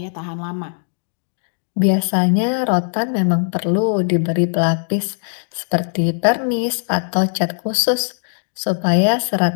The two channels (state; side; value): silent; right; digital silence